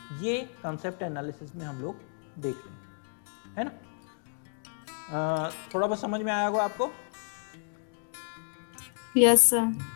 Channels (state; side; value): silent; right; 57 dB below the other